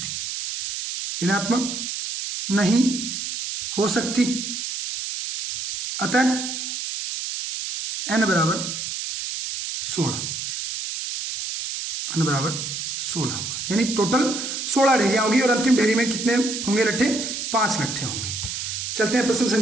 हो सकती, अतः n बराबर 16 होगा, यानी टोटल 16 ढेरियां होगी और अंतिम ढेरी में कितने होंगे लट्ठे, 5 लट्ठे होंगे। चलते हैं प्रश्न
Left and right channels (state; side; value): noise; right; hiss, 5 dB below the sound